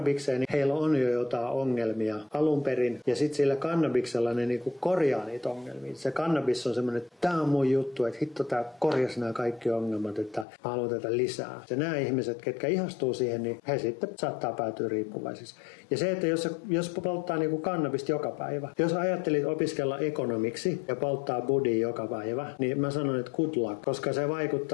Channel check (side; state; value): right; drops out; at 10.5 s